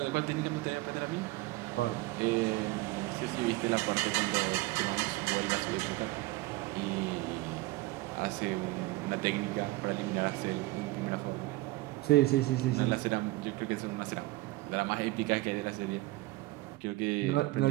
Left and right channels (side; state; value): left; quieter; 19.9 dB